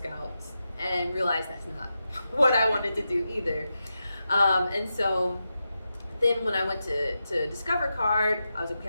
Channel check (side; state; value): both; inverted; correlation -0.89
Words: and realized that's not what I wanted to do either. And so then when I went to Discover Card, I was like, okay,